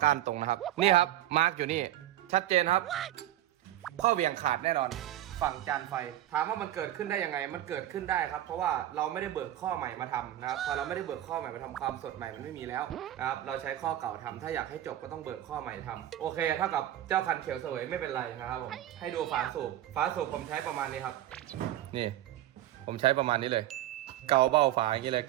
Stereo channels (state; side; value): quieter; left; 13.2 dB